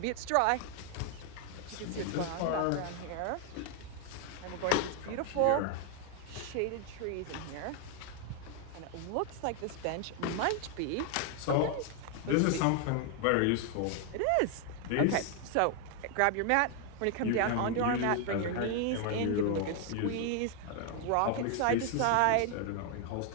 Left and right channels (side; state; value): both; different; correlation 0.00